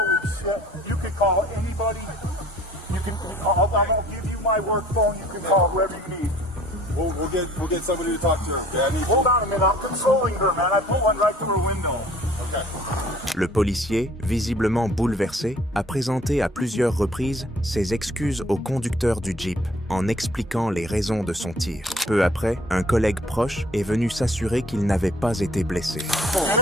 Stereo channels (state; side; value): normal; both; correlation 0.54